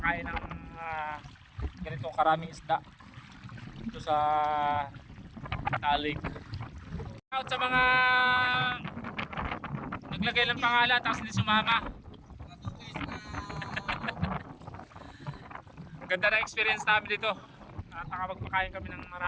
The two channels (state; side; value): identical; both; correlation 1.00